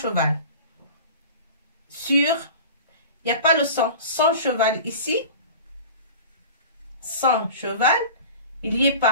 Sur, il n'y a pas le son cheval ici. Son cheval, il n'y est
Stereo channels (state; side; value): inverted; both; correlation -0.37